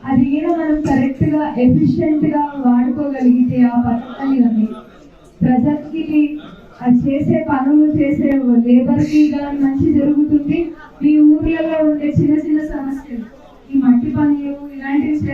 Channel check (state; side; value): identical; both; correlation 1.00